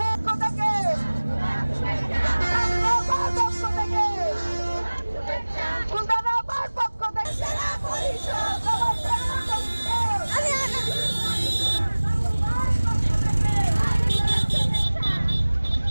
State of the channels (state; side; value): inverted; both; correlation -1.00